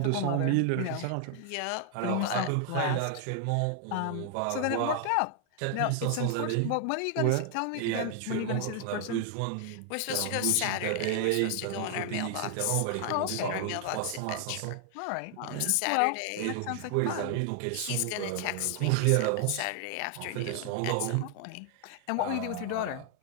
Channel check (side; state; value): both; different; correlation 0.00